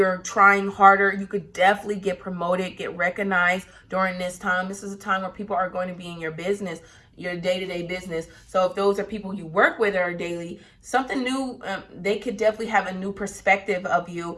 trying harder, you could definitely get promoted, get recognized during this time. This is a time where people are going to be in your business, your day-to-day business. So if those are people you work with or daily, something new, they could definitely have a new perspective of you,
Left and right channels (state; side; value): identical; both; correlation 1.00